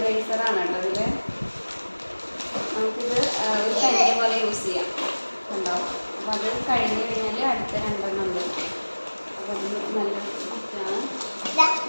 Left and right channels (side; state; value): both; inverted; correlation -1.00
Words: കേട്ടോ ഇതിൽ. നമുക്കിത് ഒരു പെൻസിൽ പോലെ യൂസ് ചെയ്യാം ഉണ്ടാവും. അപ്പം അത് കഴിഞ്ഞ് കഴിഞ്ഞാൽ അടുത്ത രണ്ടെണ്ണം ഉണ്ട്. അപ്പം അത് നല്ല ബുക്കാണ്.